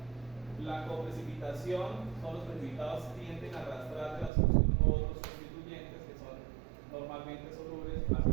La coprecipitación son los precipitados que tienden a arrastrar de la solución otros constituyentes que son normalmente solubles hacia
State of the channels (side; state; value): left; drops out; at 4.3 s